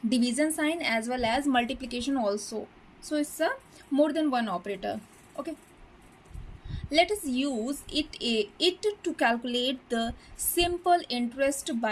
division sign as well as multiplication also. So it's a more than one operator. Okay. Let us use it to calculate the simple interest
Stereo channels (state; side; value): identical; both; correlation 1.00